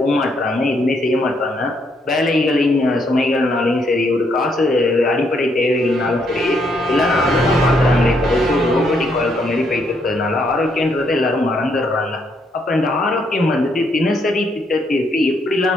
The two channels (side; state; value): both; normal; correlation 0.74